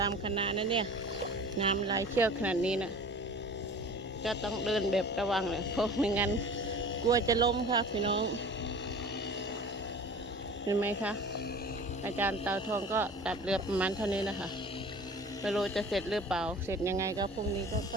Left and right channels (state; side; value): normal; both; correlation 0.41